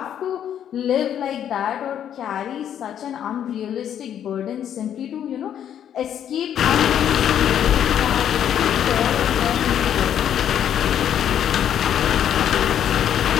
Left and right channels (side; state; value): right; quieter; 9.7 dB